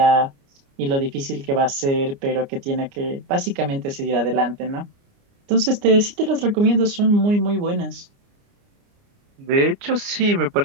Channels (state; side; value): late; left; 29 ms